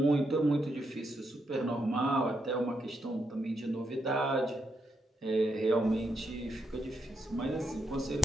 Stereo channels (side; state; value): both; normal; correlation 0.81